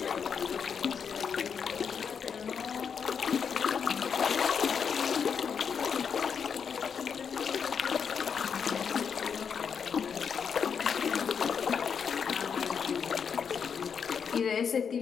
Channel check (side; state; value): right; quieter; 6.8 dB